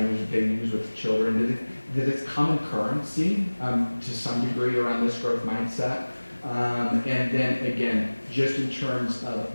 that they use with children, that it's common currency to some degree around this growth mindset. And then again, just in terms of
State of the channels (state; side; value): inverted; both; correlation -1.00